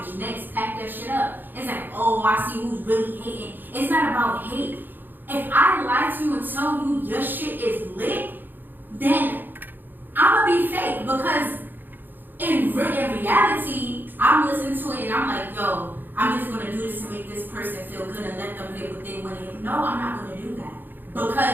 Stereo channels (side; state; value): left; late; 0.091 ms